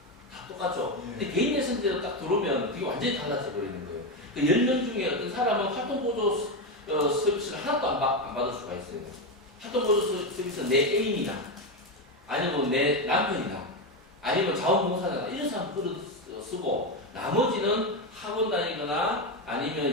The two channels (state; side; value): normal; both; correlation 0.11